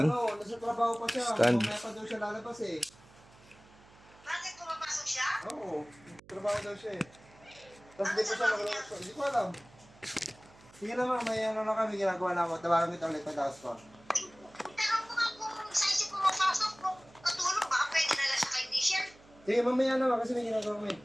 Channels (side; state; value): right; noise; hum, 25 dB below the sound